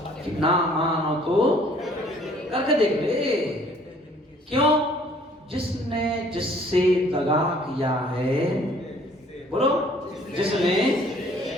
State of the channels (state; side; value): normal; both; correlation 0.57